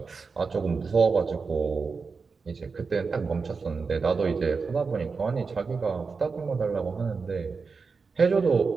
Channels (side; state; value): left; quieter; 4.8 dB